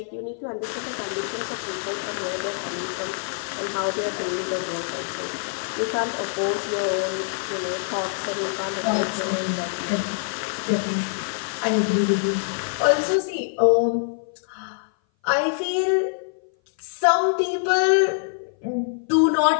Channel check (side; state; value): right; silent; 58 dB below the other